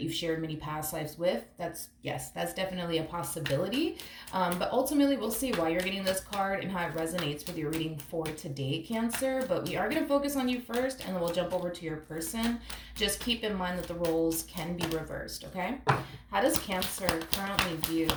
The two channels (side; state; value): both; identical; correlation 1.00